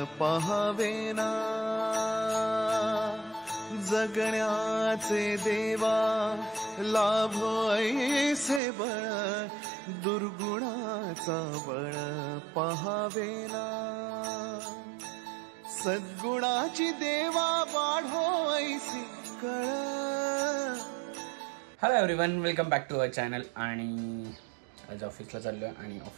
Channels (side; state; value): left; drops out; at 8.6 s